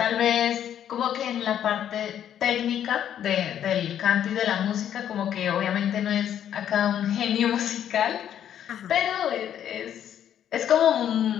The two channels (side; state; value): right; quieter; 10.0 dB